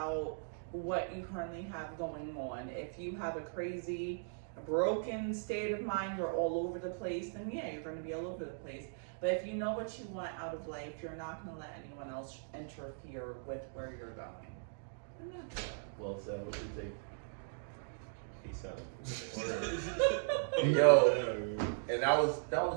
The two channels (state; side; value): silent; left; digital silence